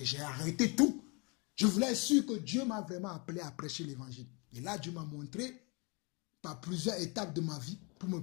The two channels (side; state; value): right; quieter; 30.5 dB